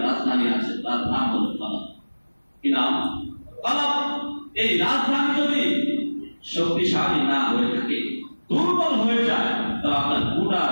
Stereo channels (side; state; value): both; inverted; correlation -1.00